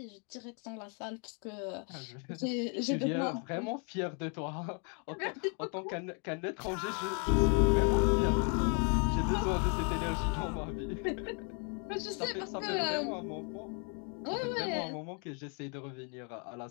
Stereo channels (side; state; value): right; quieter; 39.0 dB